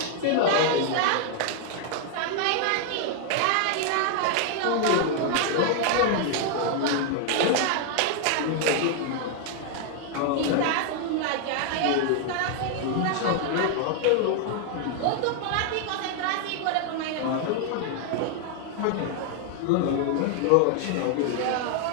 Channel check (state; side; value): different; both; correlation 0.00